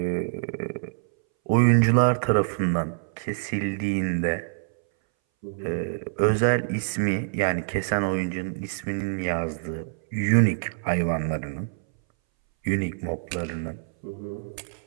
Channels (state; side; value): silent; left; 60 dB below the other